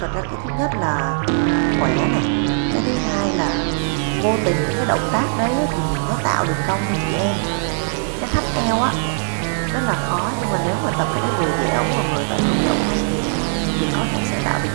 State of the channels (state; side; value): silent; left; 65 dB below the other